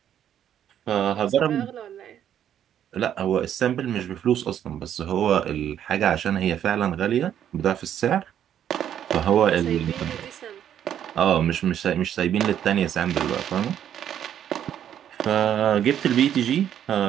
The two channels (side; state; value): left; quieter; 10.0 dB